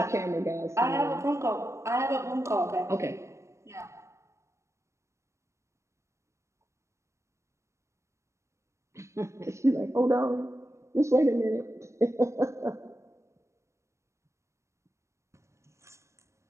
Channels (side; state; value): left; late; 0.14 ms